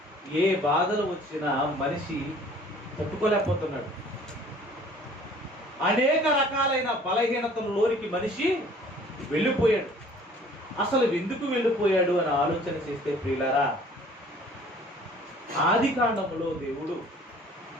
ఏ బాధలు వచ్చినా మనిషి తట్టుకోలేకపోతున్నాడు. అనేక రకాలైన బలహీనతలలోనికి మనిషి వెళ్ళిపోయాడు. అసలు ఎందుకు వెళ్ళిపోయాడు అని ఆలోచన చేస్తే ప్రియులారా, ఆది కాండములో దేవుడు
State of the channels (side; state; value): both; normal; correlation 0.52